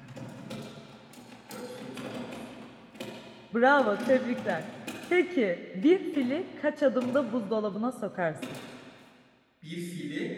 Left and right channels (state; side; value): identical; both; correlation 1.00